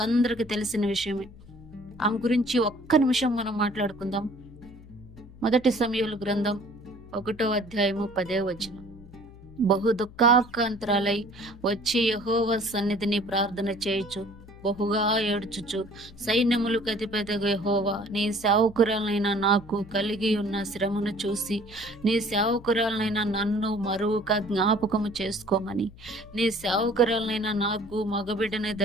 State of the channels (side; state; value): left; noise; hum, 20 dB below the sound